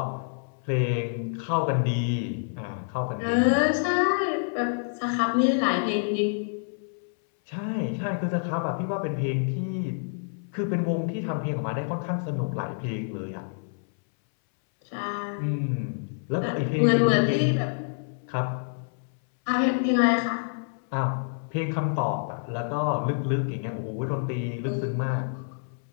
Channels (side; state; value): right; silent; 59 dB below the other